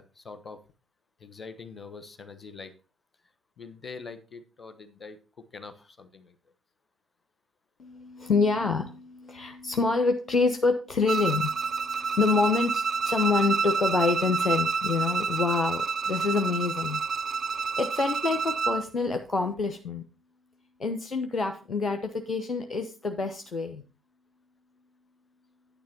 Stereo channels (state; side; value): normal; both; correlation 0.66